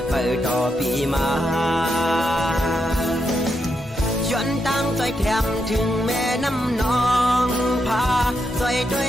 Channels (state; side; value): normal; both; correlation 0.82